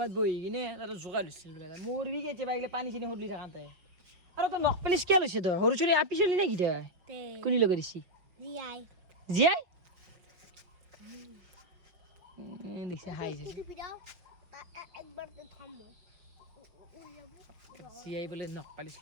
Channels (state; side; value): late; left; 5.3 ms